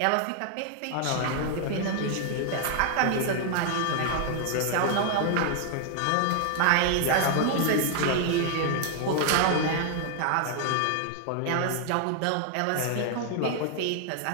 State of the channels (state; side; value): different; both; correlation 0.00